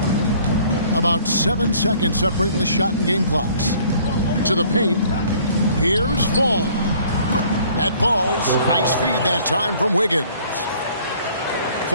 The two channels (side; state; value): both; inverted; correlation -0.56